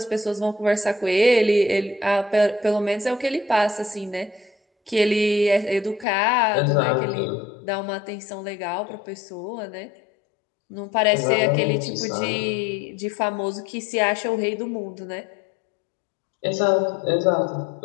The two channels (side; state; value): right; drops out; at 6.1 s